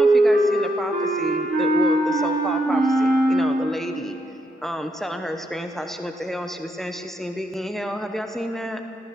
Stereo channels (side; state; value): both; normal; correlation 0.78